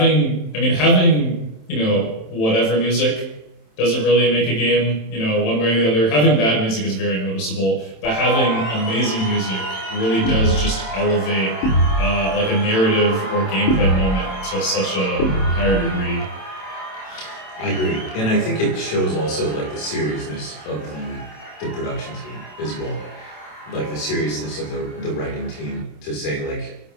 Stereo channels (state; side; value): late; right; 27 ms